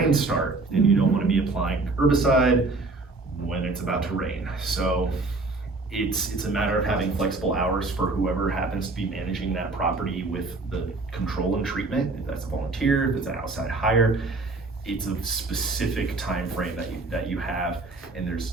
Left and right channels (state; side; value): quieter; left; 3.4 dB